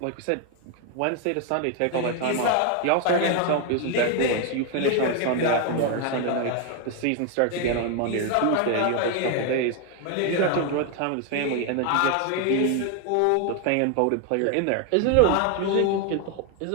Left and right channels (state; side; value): different; both; correlation 0.01